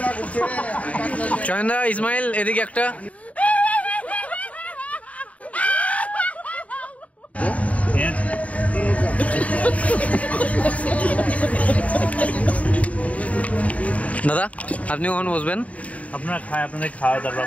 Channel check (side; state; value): right; late; 0.067 ms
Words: চয়নদা, ইসমাইল এদিকে একটা। দাদা আপনি কখন বসবেন? আপনারা খায়, আপনাদের খাওয়া, তারপর